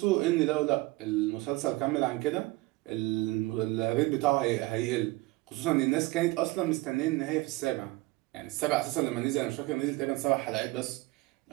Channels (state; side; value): quieter; left; 21.2 dB